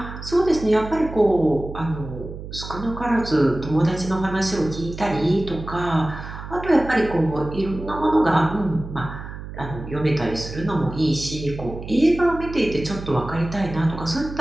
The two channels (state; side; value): noise; right; hum, 11 dB below the sound